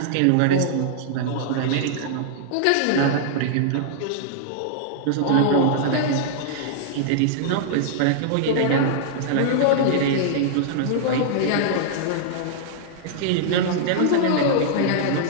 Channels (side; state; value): both; different; correlation -0.01